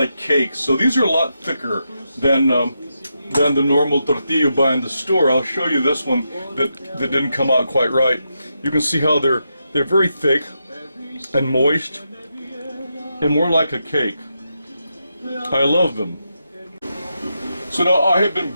cakes. So these are a lot thicker than the normal tortilla you buy in the store. I'll show you this one that didn't come out quite right. You can see how they're very thick and moist and more like a cake. I love them. So now I have been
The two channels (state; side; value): inverted; both; correlation -0.85